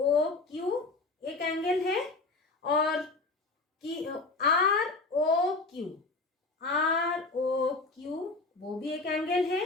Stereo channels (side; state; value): right; quieter; 3.5 dB